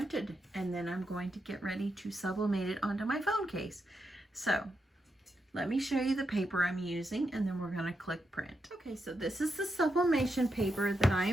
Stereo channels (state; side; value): normal; both; correlation 0.85